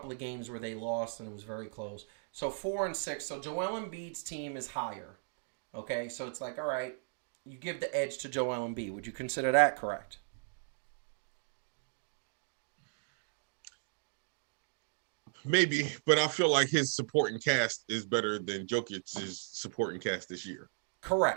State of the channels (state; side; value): silent; left; digital silence